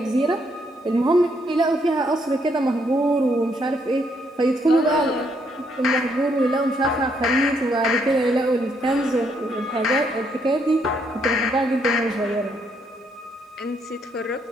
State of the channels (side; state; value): both; normal; correlation 0.73